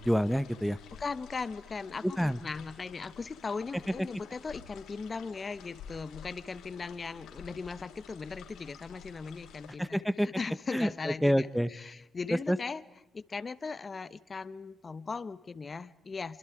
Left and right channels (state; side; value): normal; both; correlation 0.97